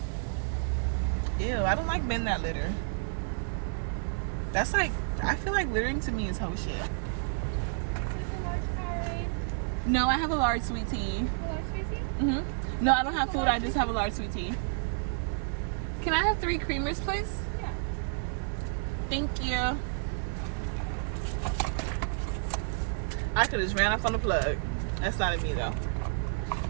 Ew, I don't like men that litter. That's like, I feel like littering to me is hoe shit. No, I have a large sweet tea. A large sweet tea? Mm-hmm. No, I don't have food. I just have a large sweet tea. Can I have 3 creamers, please? Yeah. Thank you. I could have just ran off on the plug. That's not in me, though.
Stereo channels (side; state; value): left; silent; 58 dB below the other